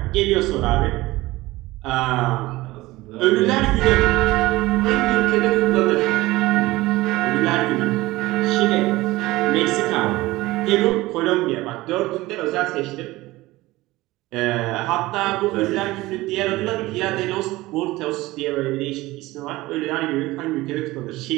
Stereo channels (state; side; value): quieter; left; 19.0 dB